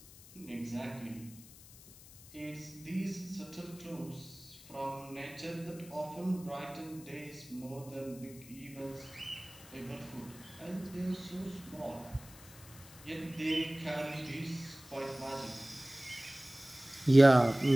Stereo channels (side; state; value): left; noise; hiss, 19 dB below the sound